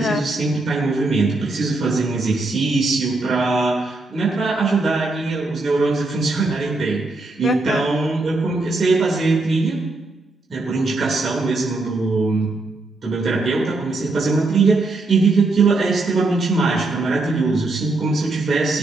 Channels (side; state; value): left; quieter; 3.1 dB